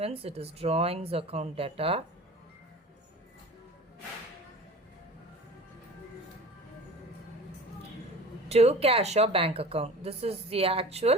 it is drawings account data. To cash or bank account. This is the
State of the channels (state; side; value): normal; both; correlation 0.39